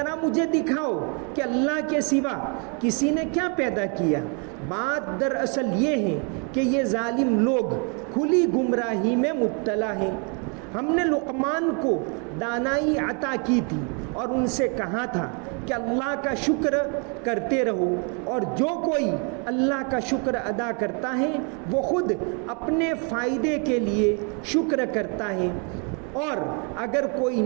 مجھے دکھاؤ کہ اللہ کے سوا کسی نے کیا پیدا کیا. بات دراصل یہ ہے کہ یہ ظالم لوگ کھلی گمراہی میں مبتلا ہیں. ہم نے لقمان کو دانائی عطا کی تھی اور ان سے کہا تھا کہ اللہ کا شکر کرتے رہو، اور جو کوئی اللہ کا شکر ادا کرتا ہے وہ خود اپنے فائدے کے لیے شکر کرتا ہے، اور اگر کوئی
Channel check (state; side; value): quieter; left; 36.8 dB